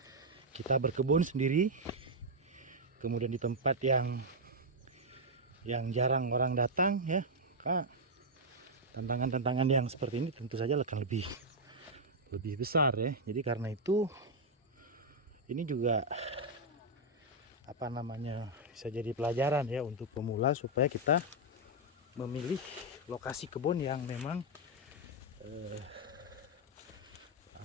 kita berkebun sendiri, kemudian di tempat yang jarang orang datang ya, maka tantangan-tantangan yang seperti ini tentu saja akan lebih besar ya. Jadi karena itu ini juga bisa jadi pelajaran ya untuk pemula, supaya kita memilih lokasi kebun yang memang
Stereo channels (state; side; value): normal; both; correlation -0.02